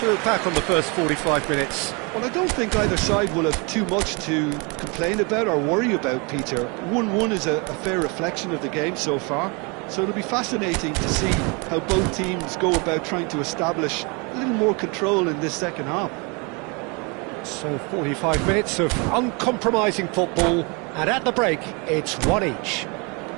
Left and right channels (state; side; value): quieter; left; 30.8 dB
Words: look back on the first 45 minutes? Well, I don't think either side will have too much to complain about or worry about, Peter. 1-1 is a fair reflection of the game so far, so it'll be fascinating to see how both teams go about trying to establish a little more control in this second half. So 45 minutes of uncompromising football, and at the break, it's one each.